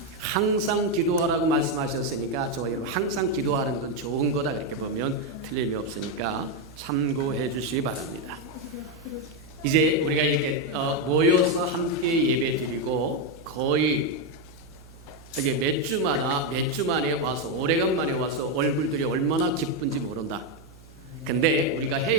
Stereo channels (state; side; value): noise; right; hum, 22 dB below the sound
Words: 항상 기도하라고 말씀하셨으니까 저와 여러분 항상 기도하는 건 좋은 거다 그렇게 보면 틀림이 없으니까 참고해 주시기 바랍니다. 이제 우리가 이렇게 모여서 함께 예배 드리고 거의 이게 몇 주 만에 와서 오래간만에 와서 얼굴들이 얼마나 기쁜지 모른다. 근데 우리가